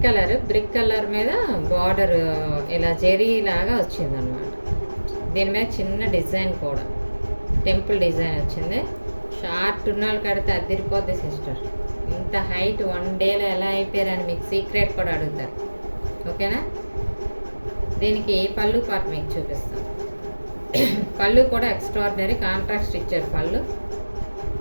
కలర్ మీద బార్డర్ ఇలా జెరీ లాగా వచ్చిందనమాట. దీని మీద చిన్న డిజైన్ కూడా టెంపుల్ డిజైన్ వచ్చింది. షార్ట్ ఉన్న వాళ్ళు కడితే అదిరిపోద్ది సిస్టర్. ఇంత హైట్ 1 డేలో ఎలా అయిపోయారని మీకు సీక్రెట్ కూడా అడుగుతారు. ఓకేనా? దీనికి పళ్ళు పార్ట్ మీకు చూపిస్తాను. పళ్ళు కూడా ఎక్స్ట్రాడినరీ కాంట్రాస్ట్ ఇచ్చారు.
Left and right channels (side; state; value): both; inverted; correlation -1.00